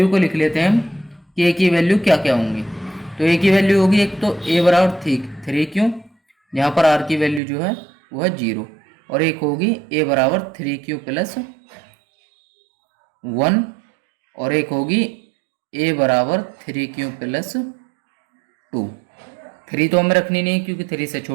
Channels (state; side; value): drops out; left; at 7.4 s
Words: को लिख लेते हैं हम कि a की वैल्यू क्या क्या होंगी। तो a की वैल्यू होगी एक तो a बराबर 3q, यहाँ पर r की वैल्यू जो है वो है 0। और एक होगी a बराबर 3q प्लस 1 और एक होगी a बराबर 3q प्लस 2। 3 तो हमें रखनी नहीं क्योंकि 3 से